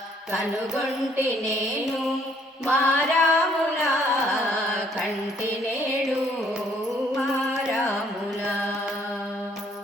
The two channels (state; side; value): normal; both; correlation 0.65